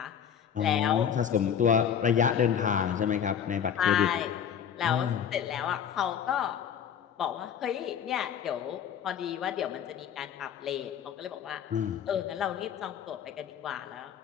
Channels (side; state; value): right; quieter; 8.4 dB